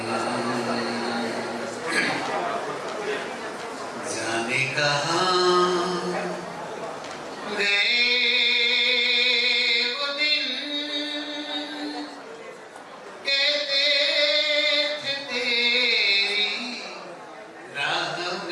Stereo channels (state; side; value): identical; both; correlation 1.00